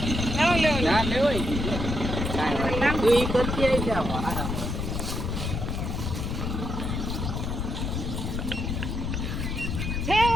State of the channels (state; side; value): noise; left; rumble, 2 dB below the sound